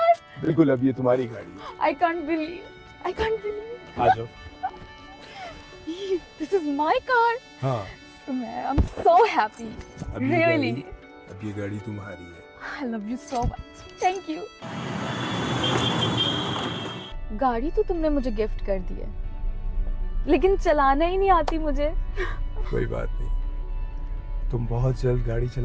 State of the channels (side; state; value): both; identical; correlation 1.00